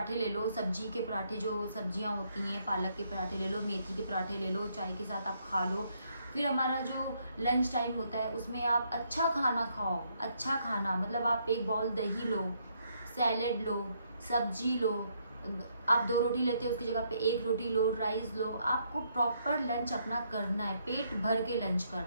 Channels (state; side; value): inverted; both; correlation -0.73